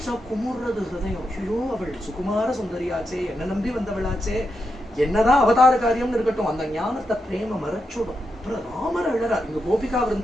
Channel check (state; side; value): normal; both; correlation 0.85